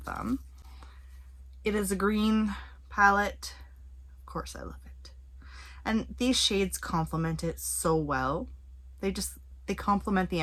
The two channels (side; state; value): both; identical; correlation 1.00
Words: them. It is a green palette. Of course I love it. And these shades complement it so well. They complement the